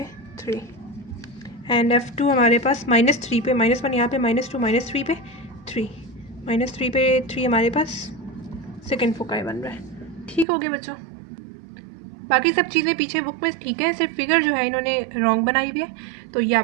3 एंड F2 हमारे पास -3 पे -1 यहाँ पे -2 -3 पे 3 -3 पे 3 हमारे पास सेकंड फोकाई बन रहा है। ठीक हो गया बच्चों, बाकी सब चीज़ें पीछे बुक में ठीक है, सिर्फ फिगर जो है इन्होंने रॉन्ग बनाई हुई है, तो ये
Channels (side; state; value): left; drops out; at 10.5 s